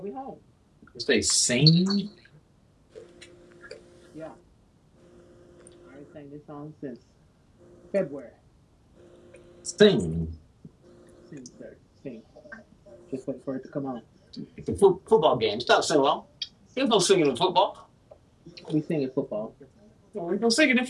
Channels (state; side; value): identical; both; correlation 1.00